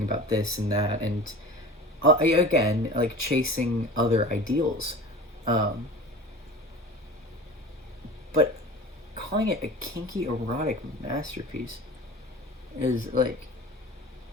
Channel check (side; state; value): both; normal; correlation 0.37